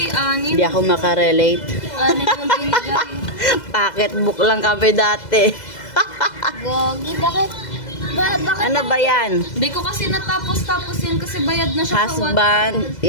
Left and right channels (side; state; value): right; late; 2.0 ms